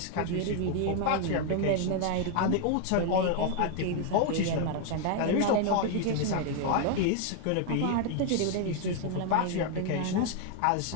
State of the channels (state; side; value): different; both; correlation 0.00